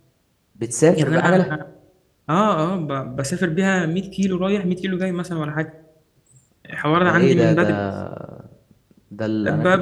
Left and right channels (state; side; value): identical; both; correlation 1.00